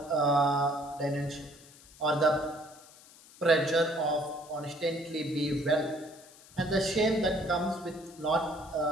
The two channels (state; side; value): noise; left; hiss, 23 dB below the sound